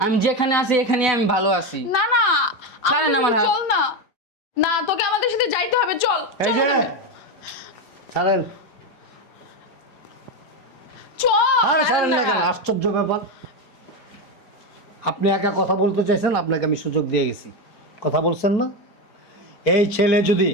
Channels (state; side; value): late; right; 4.9 ms